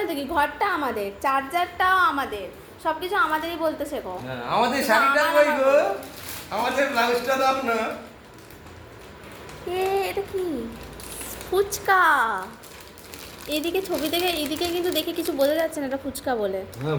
দেখি ঘরটা আমাদের, চার্জারটাও আমাদের, সবকিছু আমাদেরই বলতে শেখো। হ্যাঁ, আমাদের শাড়িটা কই গো? আমাদের ব্লাউজটা দাও না। এটা কি? ফুচকা। এদিকে ছবি থেকে এদিকে কিন্তু দেখে কিছু বোঝা যাচ্ছে না এটা ফুচকা বলে। হ্যাঁ,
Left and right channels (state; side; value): identical; both; correlation 1.00